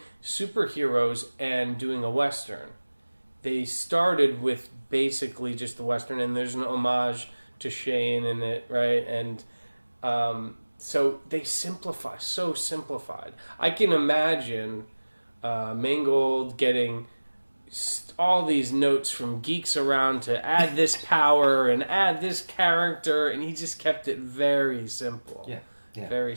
superheroes and doing a Western, they started with basically just the Western, and there's an homage to Shane in it, right? And so they simplified. I can imagine Mangold getting all these notes from geeks around to add this power and add this character, and he just kept it very simple. Yeah. Very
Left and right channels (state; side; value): inverted; both; correlation -1.00